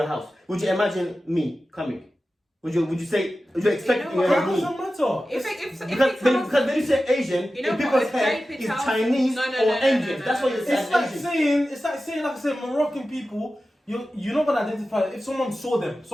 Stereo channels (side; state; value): both; normal; correlation 0.94